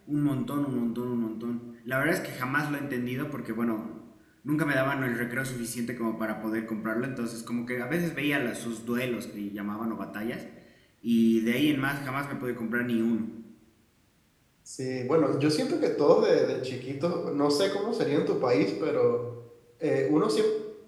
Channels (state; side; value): identical; both; correlation 1.00